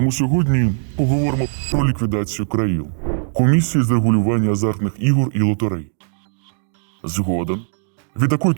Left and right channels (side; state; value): left; silent; digital silence